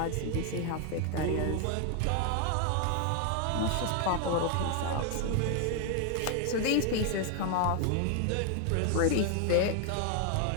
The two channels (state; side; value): different; both; correlation 0.00